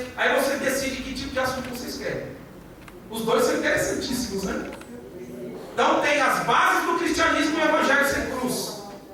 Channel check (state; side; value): identical; both; correlation 1.00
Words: Aí você decide que tipo de assunto vocês querem. Os 2 são interessantíssimos, né? Então tem as bases do cristianismo e o Evangelho sem cruz.